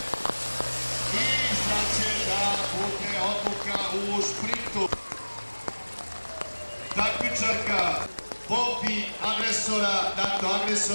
i sad će da bude odluka u šprintu. Takmičarka Bobi agresora, NATO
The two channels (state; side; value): inverted; both; correlation -1.00